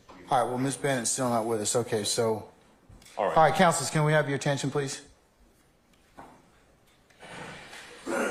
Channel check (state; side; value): identical; both; correlation 1.00